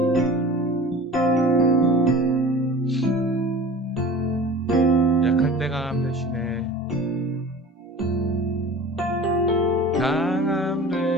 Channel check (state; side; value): normal; both; correlation 0.39